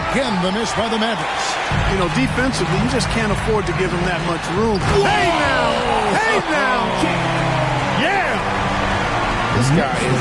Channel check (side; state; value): both; identical; correlation 1.00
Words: the miss by the Mavericks. You know, defensively, you just can't afford to give him that much room. Hey now! Hey now! Yeah! This guy